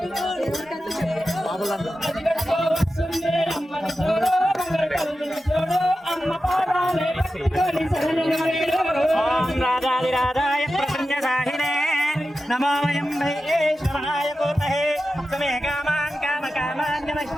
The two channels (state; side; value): normal; both; correlation 0.92